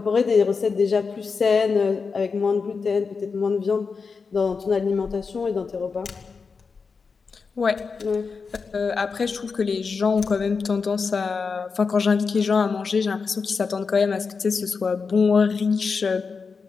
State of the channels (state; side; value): quieter; right; 5.0 dB